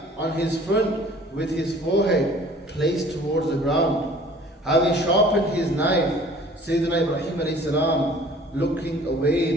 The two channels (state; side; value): normal; both; correlation 0.50